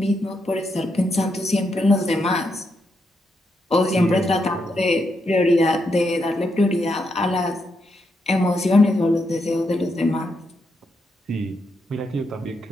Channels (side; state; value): both; normal; correlation 0.81